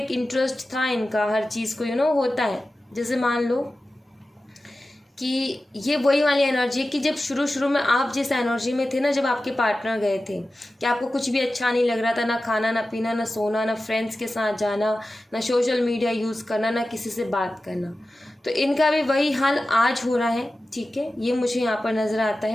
इंटरेस्ट था इनका हर चीज़ को, होता है। जैसे मान लो कि ये वही वाली एनर्जी है कि जब शुरू शुरू में आप जिस एनर्जी में थे ना, जब आपके पार्टनर गए थे, कि आपको कुछ भी अच्छा नहीं लग रहा था, ना खाना, ना पीना, ना सोना, ना फ्रेंड्स के साथ जाना, ना सोशल मीडिया यूज़ करना, ना किसी से बात करना। तो इनका भी वही हाल आज हो रहा है, ठीक है। ये मुझे यहाँ पर नज़र आता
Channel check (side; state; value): both; normal; correlation 0.94